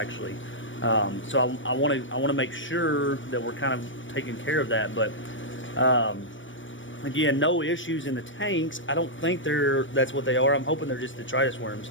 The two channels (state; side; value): late; right; 0.56 ms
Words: So I want to make sure that we're kind of taking care of that, but. Again, no issues in the tanks. I don't think that's what they are. I'm hoping they're just detritus